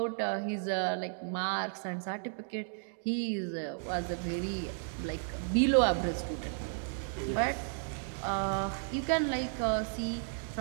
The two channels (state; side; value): silent; left; digital silence